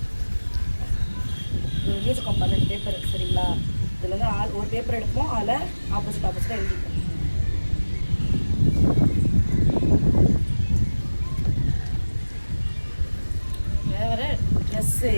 எழுதிருக்கோம் 12 பேப்பர், சரிங்களா? இதில் வந்து ஒரு பேப்பர் எடுப்போம், அதில் ஆப்போசிட்டாக எழுதிப்போம்.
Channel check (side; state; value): both; inverted; correlation -1.00